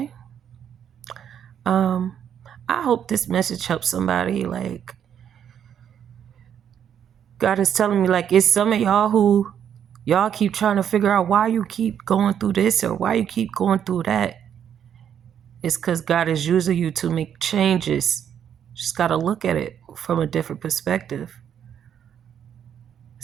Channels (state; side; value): quieter; left; 8.9 dB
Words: I hope this message helps somebody. Like, God is telling me, like, it's some of y'all who y'all keep trying to figure out why you keep going through this or why you keep going through that. It's because God is using you to make changes. Just got to look at it from a different perspective.